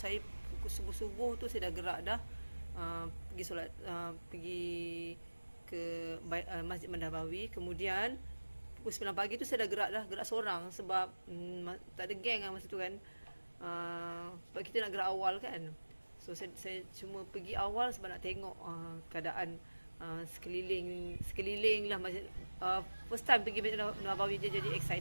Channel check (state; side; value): inverted; both; correlation -1.00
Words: pukul subuh-subuh tu saya dah gerak dah pergi solat, pergi ke Masjid Nabawi. Kemudian pukul 9 pagi tu saya dah gerak seorang sebab tak ada geng masa tu kan. Sebab kita nak gerak awal kan. So saya cuma pergi awal sebab nak tengok keadaan sekeliling lah masjid. First time pergi Masjid Nabawi, jadi